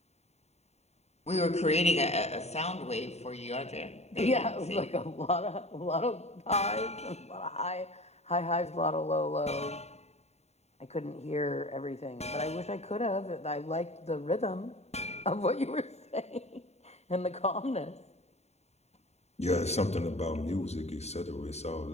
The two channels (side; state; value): right; late; 0.31 ms